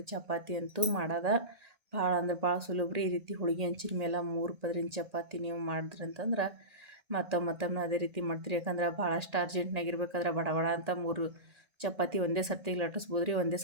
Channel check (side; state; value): left; late; 1.8 ms